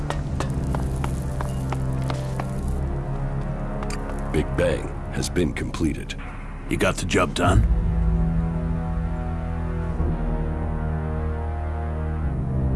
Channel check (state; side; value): identical; both; correlation 1.00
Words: been completed. You got the job done?